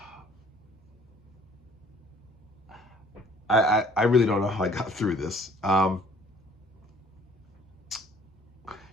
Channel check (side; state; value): both; normal; correlation 0.57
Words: I really don't know how I got through this. I